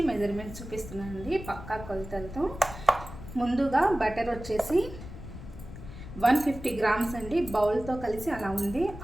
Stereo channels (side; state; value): left; noise; rumble, 12 dB below the sound